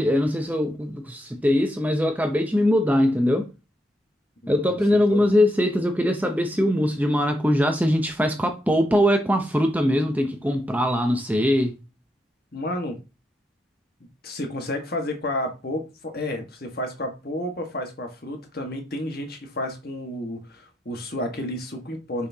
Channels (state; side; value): normal; both; correlation 0.81